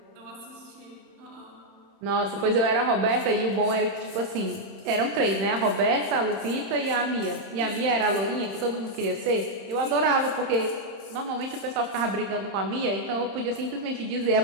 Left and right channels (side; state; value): left; late; 31 ms